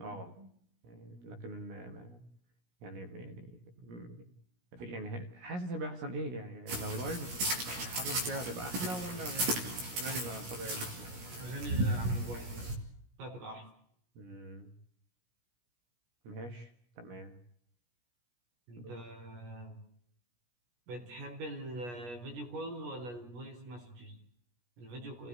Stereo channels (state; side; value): late; left; 17 ms